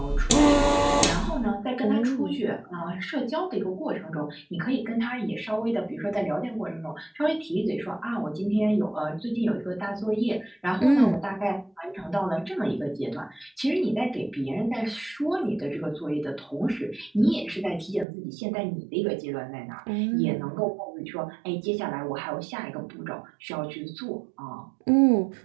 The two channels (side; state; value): left; drops out; at 18.1 s